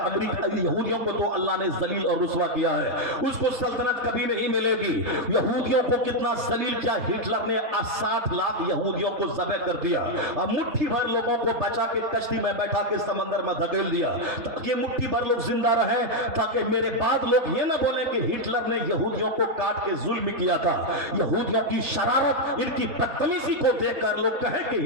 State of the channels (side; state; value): left; late; 4.2 ms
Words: امریکہ یہودیوں کو تو اللہ نے ذلیل اور رسوا کیا ہے، اس کو سلطنت کبھی نہیں ملے گی۔ یہودیوں کو کتنا ذلیل کیا، ہٹلر نے 60 لاکھ یہودیوں کو ذبح کر دیا، اب مٹھی بھر لوگوں کو بچا کے کشتی میں بیٹھا کے سمندر میں دھکیل دیا تاکہ مٹھی بھر لوگ زندہ رہیں، تاکہ میرے بعد لوگ یہ نہ بولیں کہ ہٹلر نے یہودیوں کو کاٹ کے ظلم کیا تھا۔ یہودیوں کی شرارت، ان کی بدتمیزی کو دیکھ کر لوگ کہیں کہ